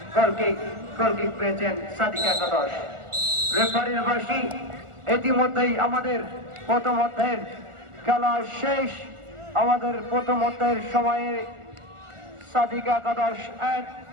গোল কিক পেয়েছেন সাদিকা গাদাস। রেফারির বাঁশি, ইতিমধ্যেই আমাদের প্রথম অধ্যায়ের খেলা শেষ। আমাদের প্রথম অধ্যায়ের সময়ে সাদিকা গাদাস 1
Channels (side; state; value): left; late; 1.4 ms